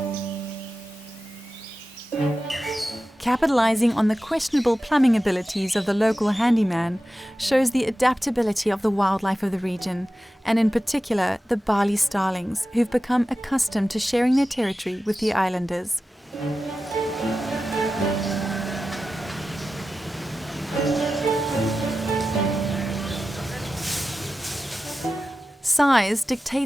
Capitalizing on the questionable plumbing abilities of the local handyman shows the adaptability of the wildlife of the region, and in particular the Bali Starlings, who've become accustomed to sharing their territory with the islanders. Size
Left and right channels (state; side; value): normal; both; correlation 0.94